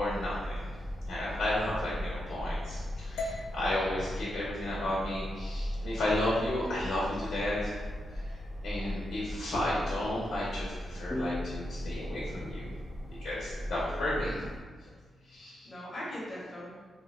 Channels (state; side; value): normal; both; correlation 0.85